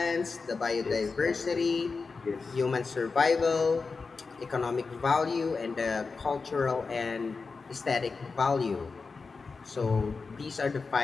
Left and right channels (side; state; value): right; quieter; 4.5 dB